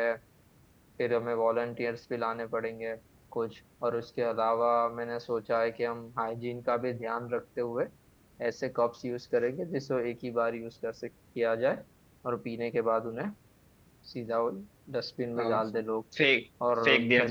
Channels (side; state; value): both; identical; correlation 1.00